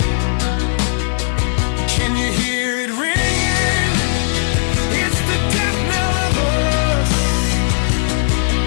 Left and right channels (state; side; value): silent; right; 68 dB below the other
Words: Can you hear it ringing? It's the death knell of us.